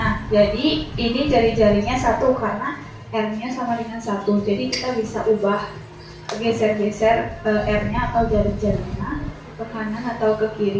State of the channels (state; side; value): identical; both; correlation 1.00